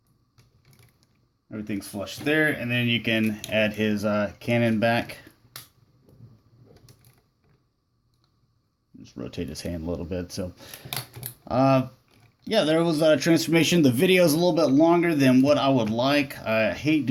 Everything's flush there. And then you can add his cannon back. Just rotate his hand a little bit. So, yeah, there was a transformation. The video is a little bit longer than what I would like. I hate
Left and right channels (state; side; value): identical; both; correlation 1.00